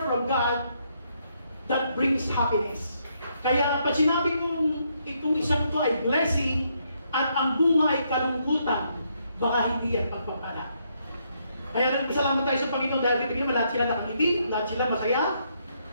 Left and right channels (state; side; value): inverted; both; correlation -0.75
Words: God that brings happiness. Kaya pag sinabi kong itong isang to ay blessing at ang bunga ay kalungkutan, baka hindi yan pagpapala. Kaya nagpasalamat tayo sa Panginoon dahil kita naman lahat sila nakangiti, lahat sila masaya.